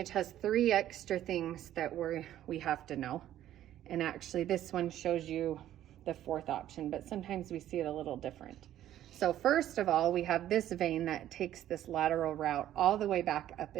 has 3 extra things that we have to know. And actually this one shows you the 4th option, but sometimes we see it a little different. So first of all, we have this vein that takes this lateral route all the way back up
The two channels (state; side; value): quieter; left; 12.3 dB